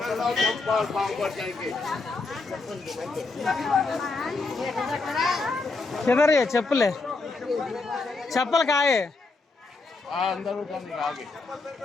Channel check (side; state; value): right; quieter; 3.7 dB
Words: किधर ये चप्पल है? चप्पल कहाँ है?